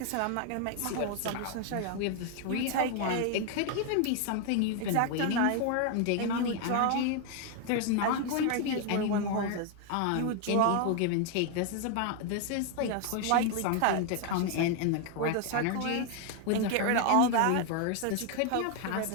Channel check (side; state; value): both; different; correlation 0.01